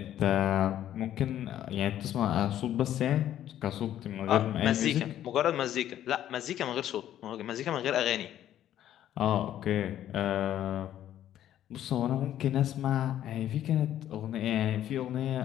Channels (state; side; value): quieter; right; 11.7 dB